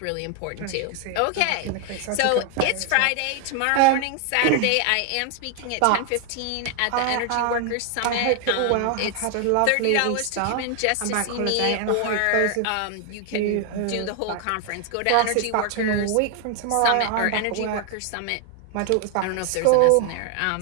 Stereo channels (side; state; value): both; different; correlation 0.00